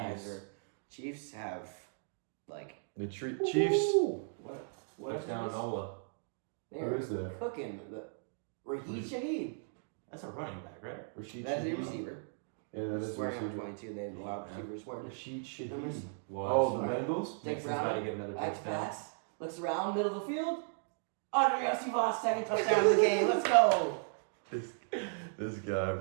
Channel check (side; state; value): left; silent; digital silence